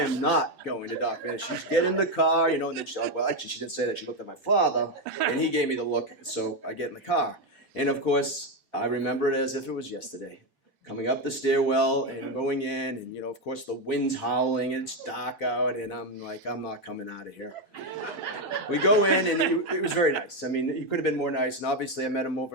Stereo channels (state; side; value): normal; both; correlation 0.08